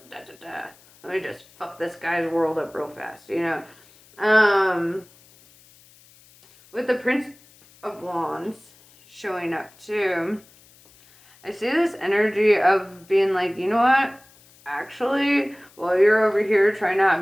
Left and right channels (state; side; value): noise; left; hiss, 27 dB below the sound